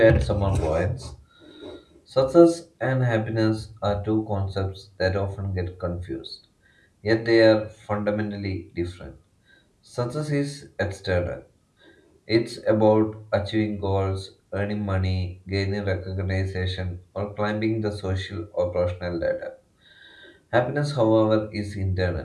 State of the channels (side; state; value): both; identical; correlation 1.00